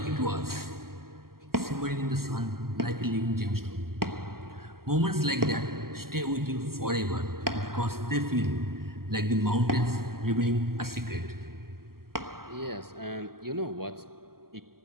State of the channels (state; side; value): late; left; 0.92 ms